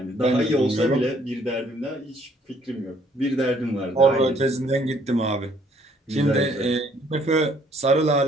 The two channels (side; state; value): both; normal; correlation 0.63